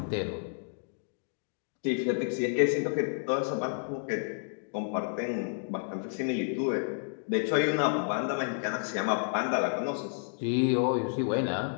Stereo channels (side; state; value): right; silent; digital silence